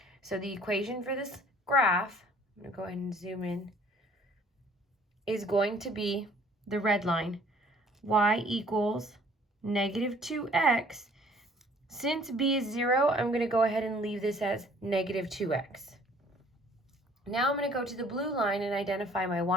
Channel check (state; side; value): normal; both; correlation 0.57